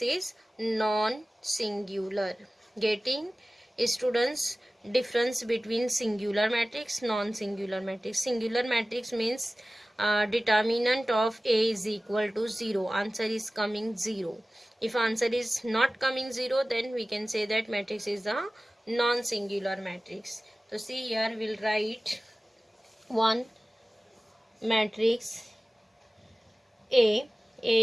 is non-singular. Getting students difference between singular matrix, non-singular matrix. Singular matrix means determinant of A is equal to 0, answer is coming 0. If answer is not coming 0, then we can say that matrix is a non-singular matrix. So see here we'll write one matrix A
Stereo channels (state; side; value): normal; both; correlation 0.97